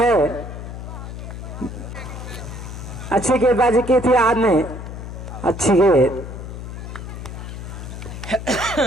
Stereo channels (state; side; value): noise; left; hum, 9 dB below the sound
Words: अच्छी गेंदबाजी की थी आज ने। अच्छी गेंद